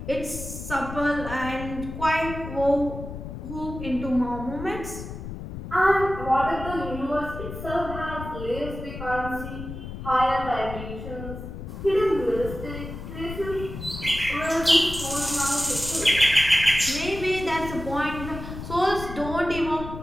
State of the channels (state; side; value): noise; left; rumble, 9 dB below the sound